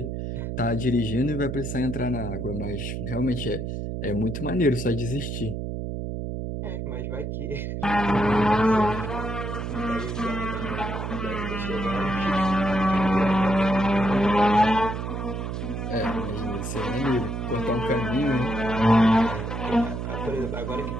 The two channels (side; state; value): right; noise; hum, 4 dB below the sound